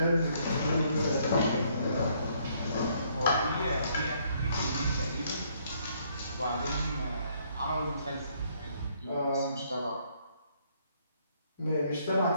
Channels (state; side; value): inverted; both; correlation -0.67